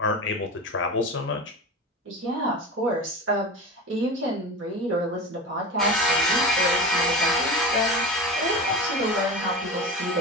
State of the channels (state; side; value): normal; both; correlation 0.28